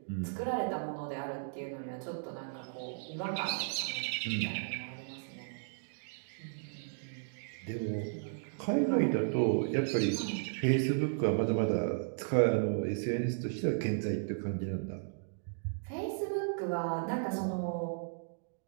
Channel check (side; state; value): left; silent; digital silence